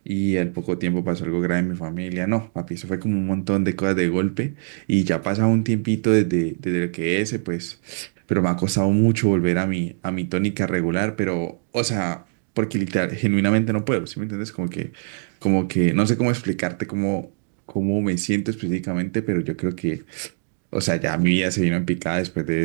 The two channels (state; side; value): silent; left; digital silence